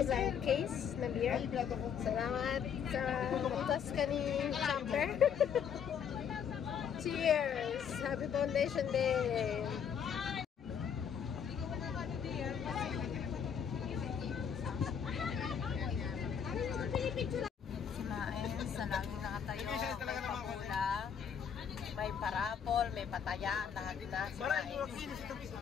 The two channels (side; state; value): right; quieter; 7.6 dB